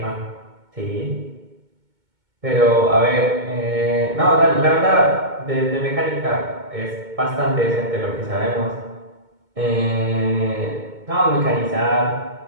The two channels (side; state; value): left; late; 2.2 ms